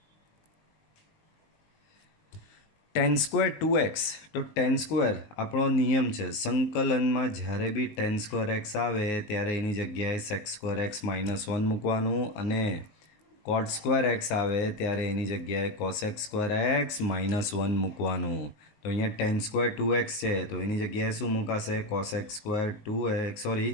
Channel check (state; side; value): late; right; 19 ms